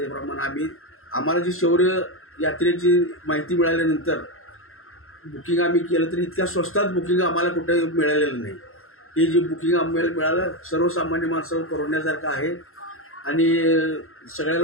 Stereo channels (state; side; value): late; right; 0.61 ms